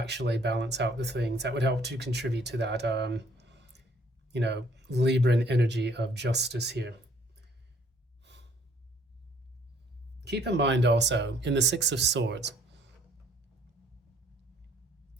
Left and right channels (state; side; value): normal; both; correlation 0.61